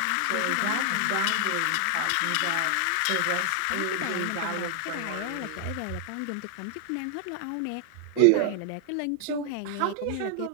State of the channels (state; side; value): different; both; correlation 0.00